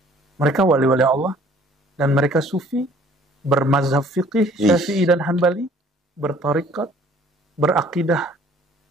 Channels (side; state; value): both; normal; correlation 0.56